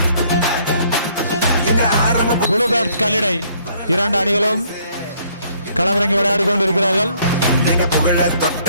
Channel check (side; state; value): both; inverted; correlation -0.64